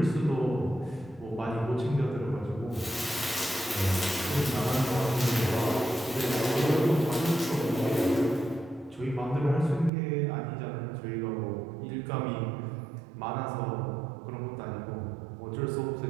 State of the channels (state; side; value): drops out; left; at 9.9 s